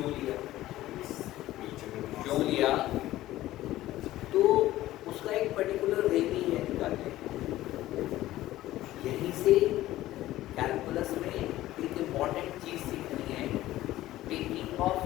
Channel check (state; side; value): quieter; right; 15.4 dB